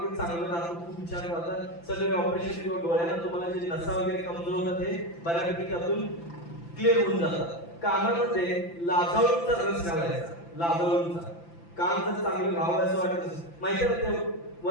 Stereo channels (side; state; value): right; late; 5.9 ms